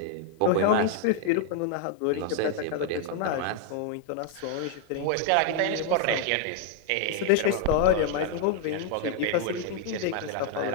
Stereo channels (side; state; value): both; different; correlation 0.00